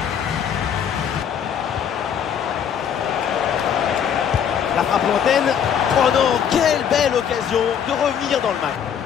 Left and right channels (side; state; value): right; quieter; 8.3 dB